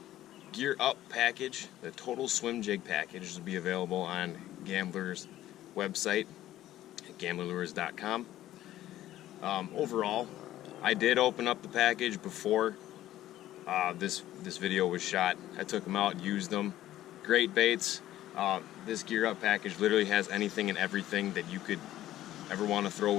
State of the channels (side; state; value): right; quieter; 13.8 dB